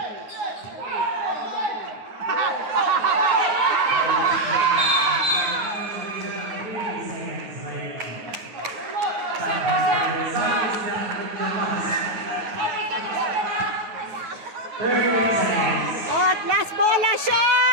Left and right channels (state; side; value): late; left; 9.2 ms